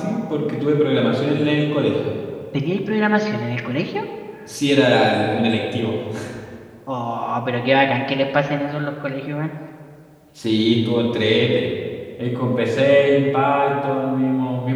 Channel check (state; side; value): identical; both; correlation 1.00